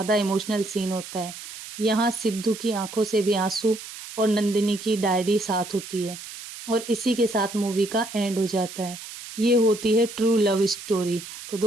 इमोशनल सीन होता है। यहाँ सिद्धू की आंखों से भी आंसू और नंदिनी की डायरी साथ होती है, और इसी के साथ मूवी का एंड हो जाता है। ये होती है ट्रू लव स्टोरी। तो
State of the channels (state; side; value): noise; right; hiss, 12 dB below the sound